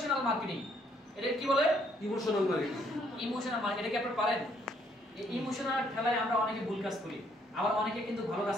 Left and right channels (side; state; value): both; normal; correlation 0.68